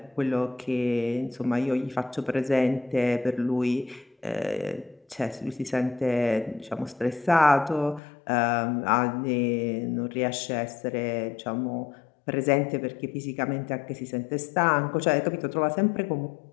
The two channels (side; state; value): right; drops out; at 8.0 s